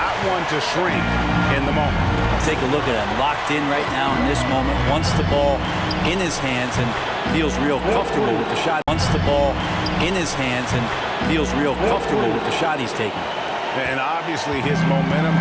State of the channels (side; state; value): both; identical; correlation 1.00